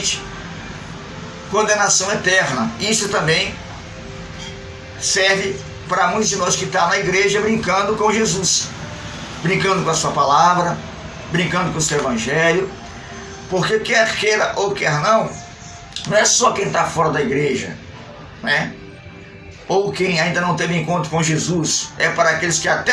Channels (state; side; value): identical; both; correlation 1.00